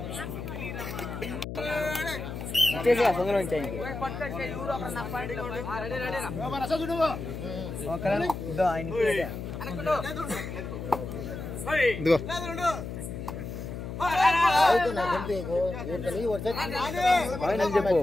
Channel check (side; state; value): left; noise; hum, 7 dB below the sound